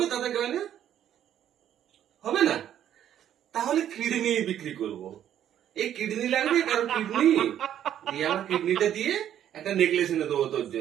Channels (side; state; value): left; quieter; 10.6 dB